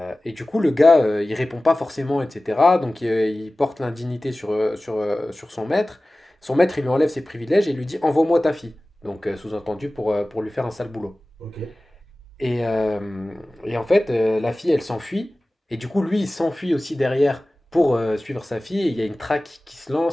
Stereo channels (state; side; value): normal; both; correlation 0.97